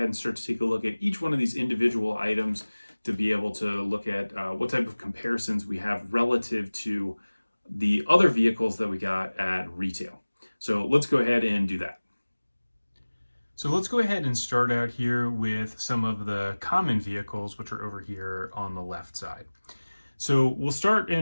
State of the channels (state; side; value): inverted; both; correlation -1.00